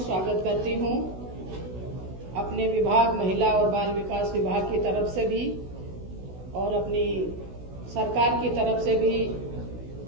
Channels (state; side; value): late; left; 16 ms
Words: करती हूँ। अपने विभाग महिला और बाल विकास विभाग की तरफ से भी और अपनी सरकार की तरफ से भी